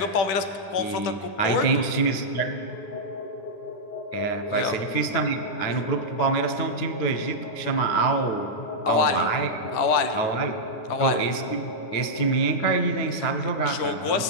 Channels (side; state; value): right; late; 9.2 ms